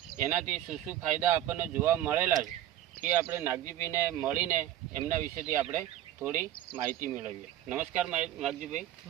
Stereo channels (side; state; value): left; quieter; 12.6 dB